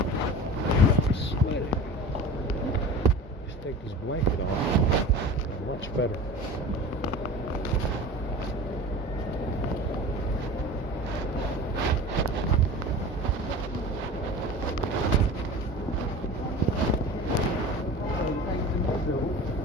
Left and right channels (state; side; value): normal; both; correlation 0.35